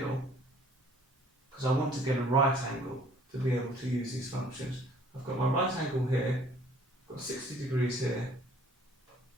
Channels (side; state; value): both; normal; correlation 0.57